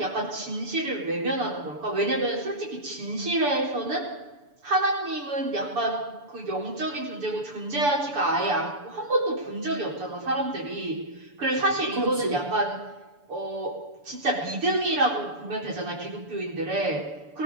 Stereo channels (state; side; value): late; left; 6.9 ms